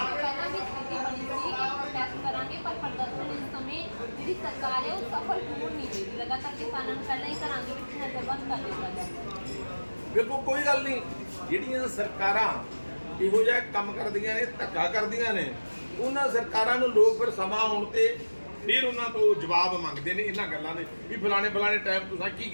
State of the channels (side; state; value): both; inverted; correlation -1.00